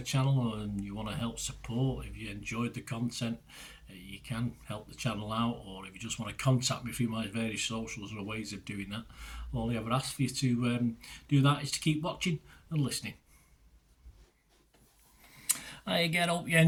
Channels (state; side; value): identical; both; correlation 1.00